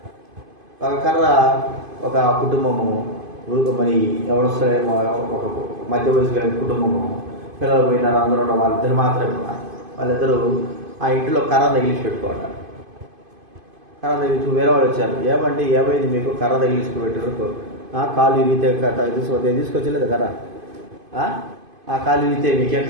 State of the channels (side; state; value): left; late; 2.5 ms